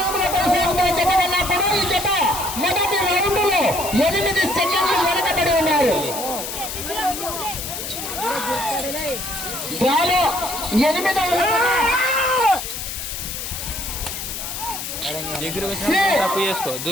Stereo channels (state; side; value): noise; left; hiss, 6 dB below the sound